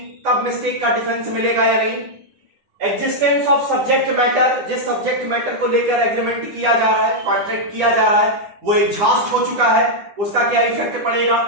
तब मिस्टेक का डिफेंस मिलेगा या नहीं। एग्जिस्टेंस ऑफ सब्जेक्ट मैटर, जिस सब्जेक्ट मैटर को लेकर एग्रीमेंट किया जा रहा है, कॉन्ट्रैक्ट किया जा रहा है, वो एग्जॉस्ट हो चुका है, उसका क्या इफेक्ट पड़ेगा।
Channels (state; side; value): late; left; 9.9 ms